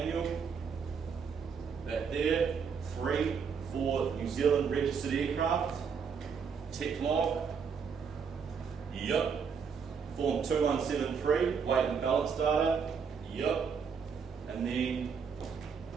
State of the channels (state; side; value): quieter; left; 6.2 dB